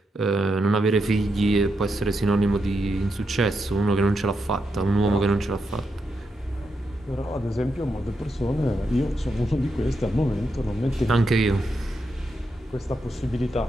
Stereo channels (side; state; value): both; normal; correlation 0.84